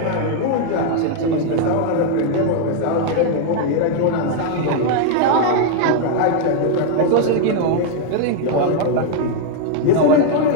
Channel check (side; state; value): both; different; correlation 0.00